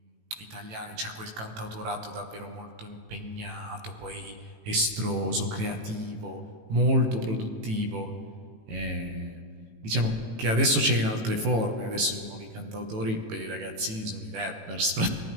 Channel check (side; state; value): left; late; 18 ms